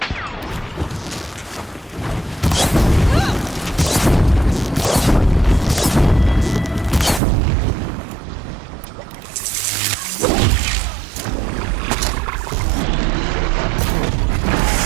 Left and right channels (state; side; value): drops out; left; at 7.2 s